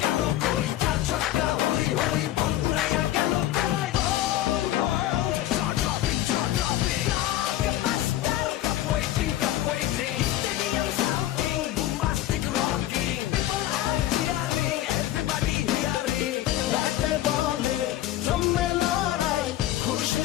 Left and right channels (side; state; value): right; quieter; 13.8 dB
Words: galo koi. Chaka hoy hoy, bongalaya galo koi. Oh world, jaw dropping, jaw dropping. Blockbuster, cup waiting, cup waiting. Stadium shouting, bombastic rocking. People are cheering, everybody hearing. রাতে বলে জমে লড়াই